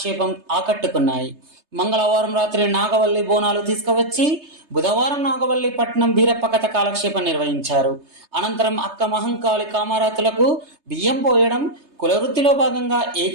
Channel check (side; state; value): left; late; 3.3 ms